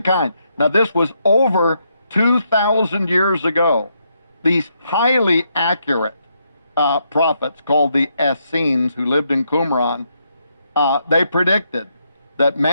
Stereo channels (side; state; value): both; inverted; correlation -0.78